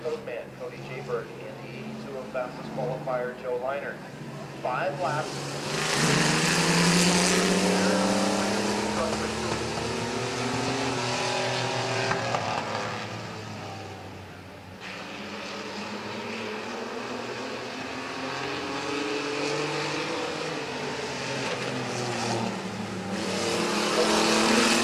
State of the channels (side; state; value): both; identical; correlation 1.00